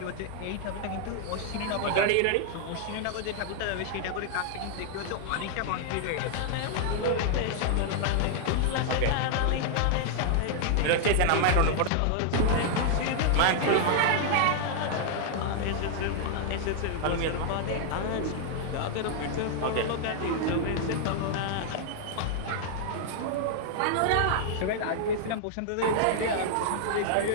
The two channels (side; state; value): both; different; correlation -0.01